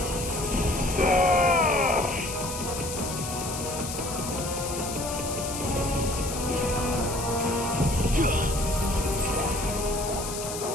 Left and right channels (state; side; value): noise; left; hiss, 7 dB below the sound